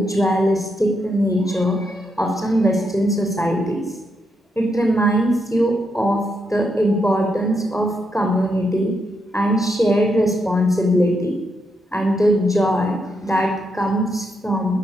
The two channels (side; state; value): both; normal; correlation 0.81